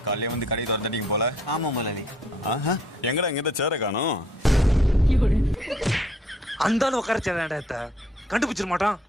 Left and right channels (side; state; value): both; normal; correlation 0.62